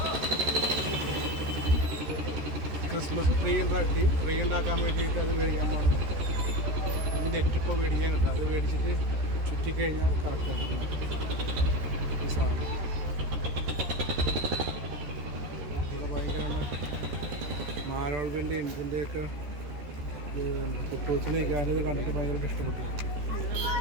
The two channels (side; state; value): left; late; 14 ms